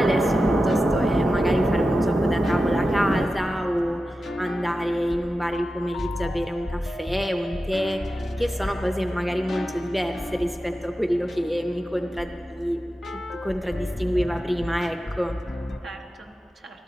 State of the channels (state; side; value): normal; both; correlation 0.92